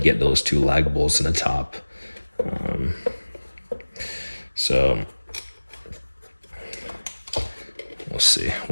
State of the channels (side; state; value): both; inverted; correlation -1.00